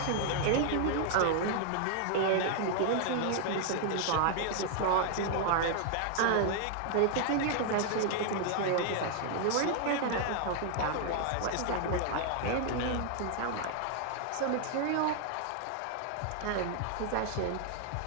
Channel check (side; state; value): both; different; correlation 0.00